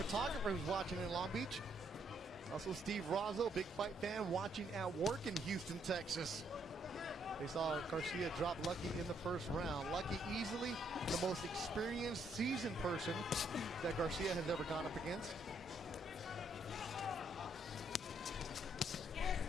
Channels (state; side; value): normal; both; correlation 0.72